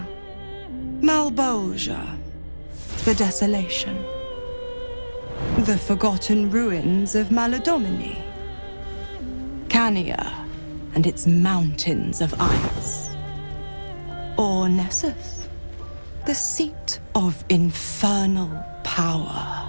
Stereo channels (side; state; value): both; inverted; correlation -1.00